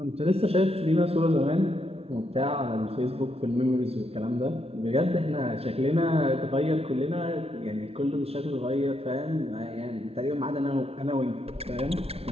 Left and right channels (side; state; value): left; late; 0.29 ms